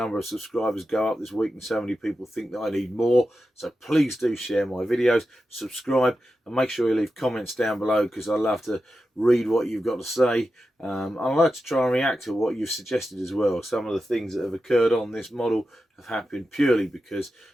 of subscribers go up this week, and so many people think that I need more. So please do share my videos, subscribe, and make sure you leave comments down below, because I love to read what you've got to say. I like to try and react to what you've suggested as well. Some of the things that have occurred on this model have happened purely because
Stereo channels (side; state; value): both; normal; correlation 0.91